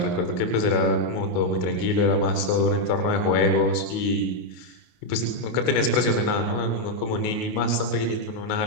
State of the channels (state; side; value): late; right; 28 ms